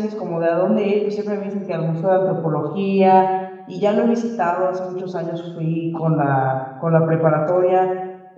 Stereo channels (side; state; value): both; identical; correlation 1.00